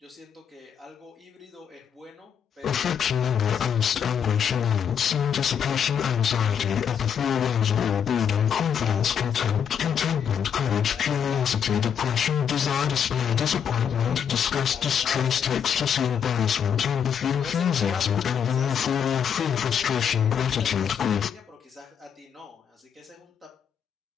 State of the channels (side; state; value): right; quieter; 7.9 dB